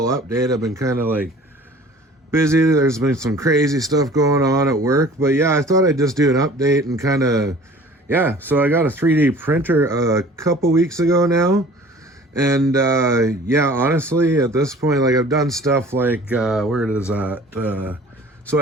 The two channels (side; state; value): both; normal; correlation 0.47